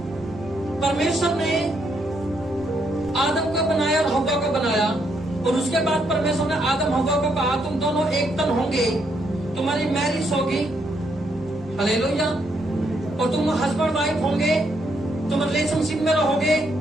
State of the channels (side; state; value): both; normal; correlation 0.75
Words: परमेश्वर ने आदम को बनाया और हव्वा को बनाया, और उसके बाद परमेश्वर ने आदम हव्वा को कहा तुम दोनों एक तन होंगे, तुम्हारी मैरिज होगी। हालेलुया। और तुम हस्बैंड वाइफ होंगे, तुम रिलेशनशिप में रहोगे,